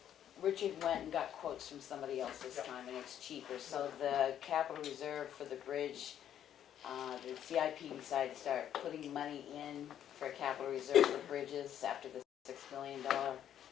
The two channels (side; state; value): right; quieter; 10.3 dB